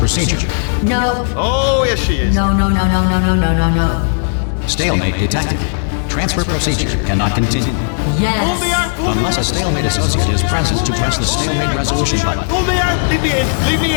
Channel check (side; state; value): right; silent; digital silence